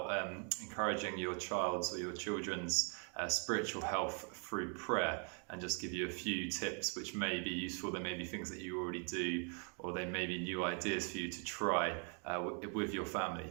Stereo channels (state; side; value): quieter; left; 39.9 dB